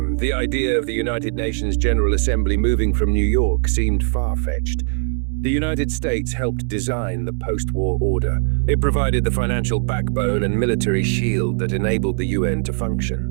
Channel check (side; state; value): left; silent; 65 dB below the other